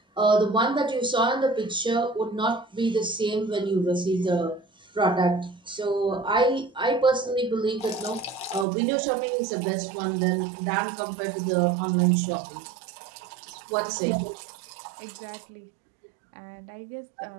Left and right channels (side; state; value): left; drops out; at 8.7 s